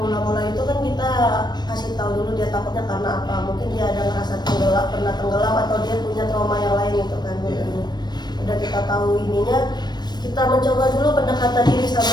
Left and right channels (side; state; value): right; late; 0.21 ms